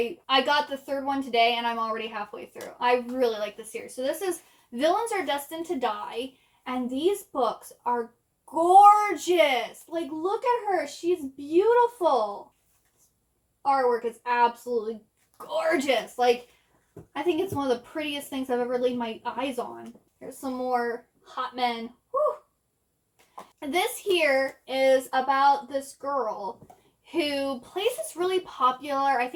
got the 3rd one today, and I'm already halfway through. I really like this series. So this is Villains Are Destined to Die, and these books are gorgeous. Like, look at her. She's beautiful. Artwork is absolutely gorgeous. Like, I think it's one of the prettiest things I've ever laid my eyes on. Here's some more hot men. Whew. This here is about this girl who plays this really popular, I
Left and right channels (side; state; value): both; identical; correlation 1.00